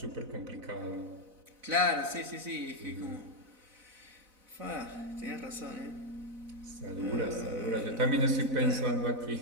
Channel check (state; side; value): late; left; 4.0 ms